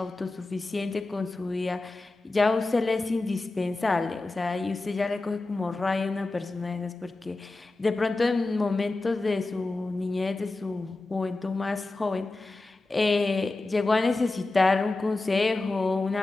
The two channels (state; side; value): quieter; right; 3.1 dB